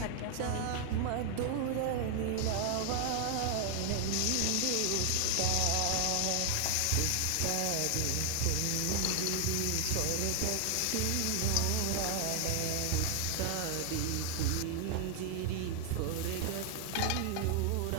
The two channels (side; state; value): both; different; correlation 0.00